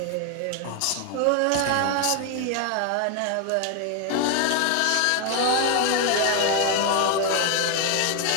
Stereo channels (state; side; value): different; both; correlation 0.01